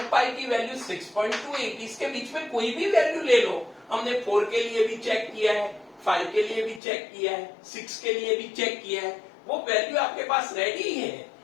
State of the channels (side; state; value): right; drops out; at 6.8 s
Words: पाई की वैल्यू 6.28। इसके बीच में कोई भी वैल्यू ले लो, हमने 4 के लिए भी चेक किया है, 5 के लिए भी चेक किया है, 6 के लिए भी चेक किया है, वो वैल्यू आपके पास रेडी है।